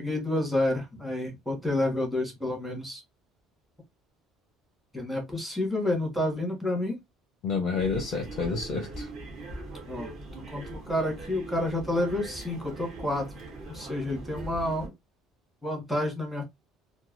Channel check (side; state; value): both; normal; correlation 0.70